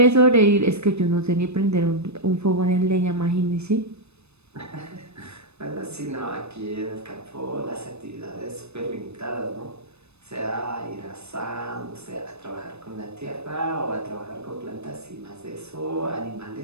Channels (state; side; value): late; left; 0.80 ms